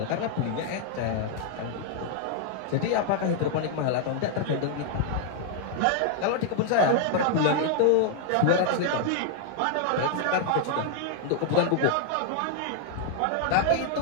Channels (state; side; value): different; both; correlation 0.00